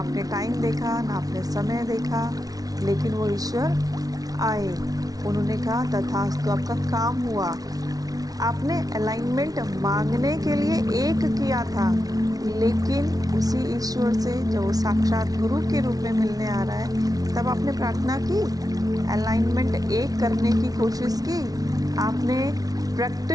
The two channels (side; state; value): left; late; 0.18 ms